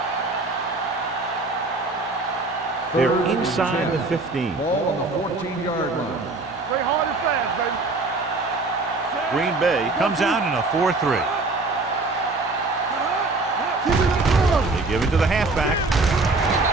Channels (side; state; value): left; quieter; 3.4 dB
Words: They're inside the 15. Ball on the 14-yard line. Play hard and fast, baby. Green Bay comes out in a 4-3. They give it to the halfback.